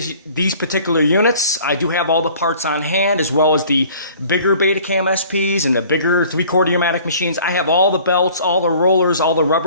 particular units. I do have all the parts on hand, as well as the bigger Betacam SPs and the bigger 3/4 Umatic machines. I have all the belts, all the rollers, all the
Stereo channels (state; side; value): inverted; both; correlation -0.51